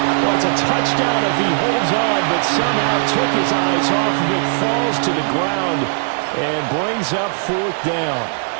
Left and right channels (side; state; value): left; silent; 60 dB below the other